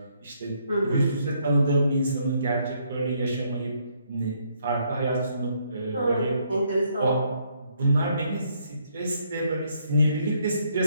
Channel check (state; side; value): inverted; both; correlation -0.71